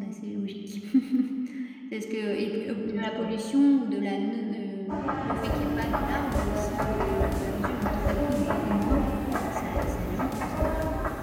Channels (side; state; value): both; identical; correlation 1.00